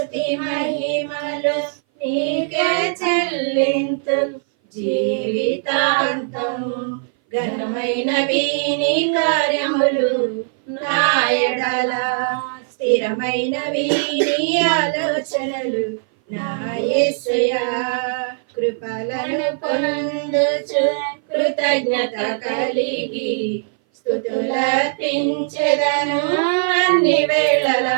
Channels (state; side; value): silent; left; 59 dB below the other